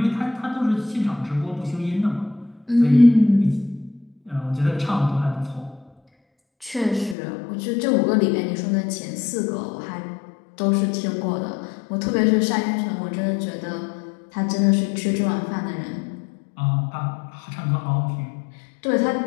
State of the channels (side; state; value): right; drops out; at 7.2 s